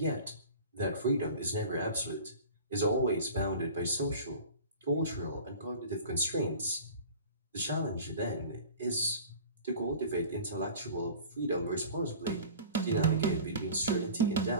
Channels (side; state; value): both; inverted; correlation -0.40